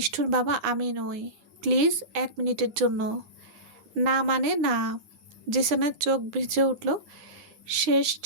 বাবা আমি নই। প্লিজ, 1 মিনিটের জন্য। না মানে না। জিসানের চোখ ভিজে উঠল। শেষ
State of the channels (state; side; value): late; left; 10 ms